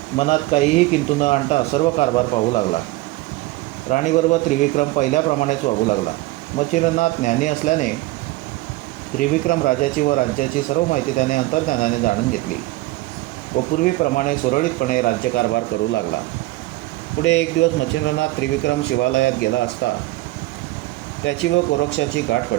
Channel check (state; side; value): quieter; left; 18.9 dB